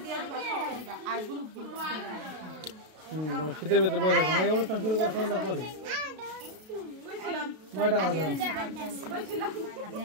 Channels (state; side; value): late; left; 33 ms